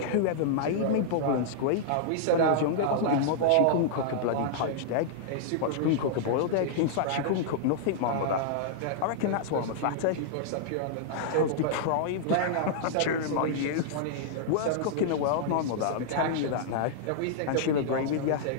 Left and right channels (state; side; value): different; both; correlation -0.01